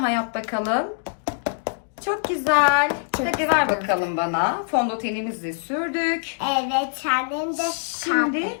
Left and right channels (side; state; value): right; silent; 63 dB below the other